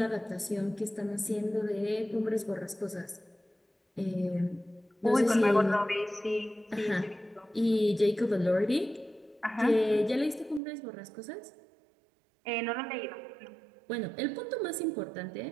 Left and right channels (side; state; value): left; drops out; at 10.6 s